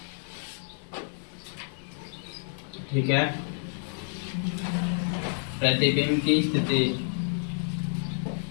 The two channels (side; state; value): right; silent; 59 dB below the other